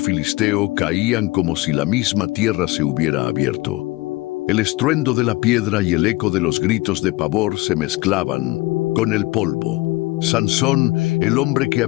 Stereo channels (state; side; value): quieter; right; 21.2 dB